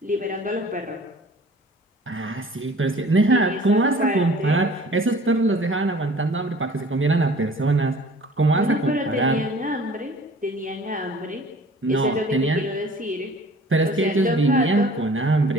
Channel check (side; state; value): both; normal; correlation 0.48